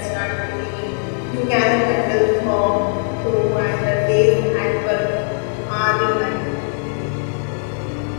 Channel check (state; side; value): silent; right; digital silence